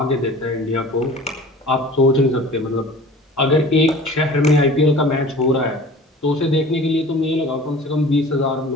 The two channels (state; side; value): normal; both; correlation 0.43